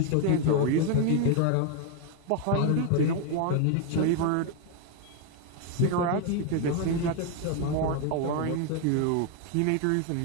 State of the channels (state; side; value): different; both; correlation 0.01